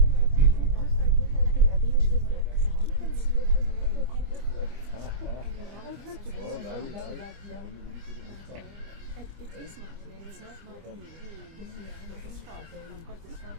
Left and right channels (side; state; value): left; late; 25 ms